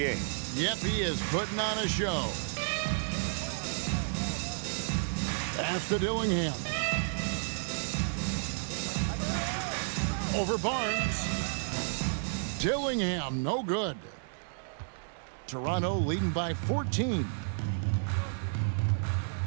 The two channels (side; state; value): left; silent; digital silence